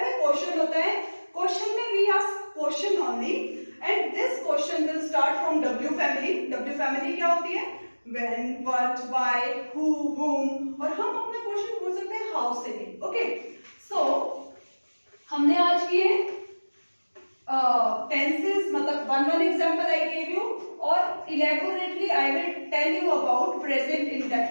क्वेश्चन होता है. क्वेश्चन में we ask question only and this question will start from W family. W family क्या होती है? व्हेन, व्हाट, व्हाई, हु, हुम. और हम अपना क्वेश्चन पूछ सकते हैं हाउ से भी. ओके, सो हमने आज किए टेंसेस, मतलब one example I gave you, और elaborately I will tell you about present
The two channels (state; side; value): inverted; both; correlation -1.00